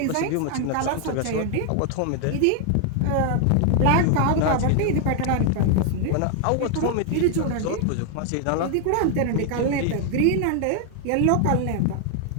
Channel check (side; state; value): both; different; correlation 0.00